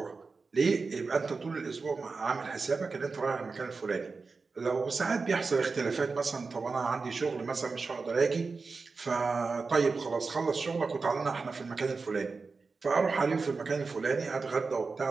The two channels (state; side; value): quieter; left; 4.3 dB